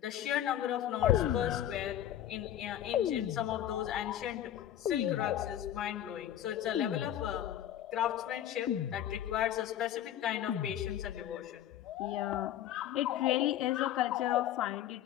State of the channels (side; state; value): right; quieter; 11.5 dB